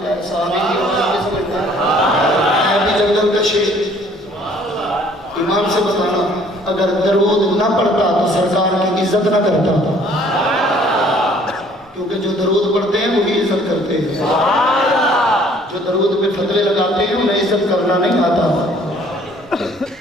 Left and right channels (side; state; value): both; normal; correlation 0.57